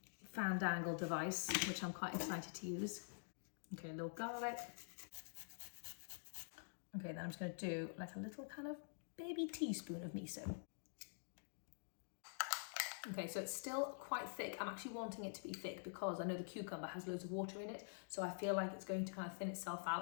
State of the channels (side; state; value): right; silent; digital silence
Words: fandangle device, which I'm quite excited to use. Okay, a little garlic. Okay, then I'm just going to do a little kind of baby teaspoon of miso. Okay, so it's still quite thick. I'm actually wanting it to be thick because I know the cucumber has loads of water in it, so I feel like it's going to kind of thin itself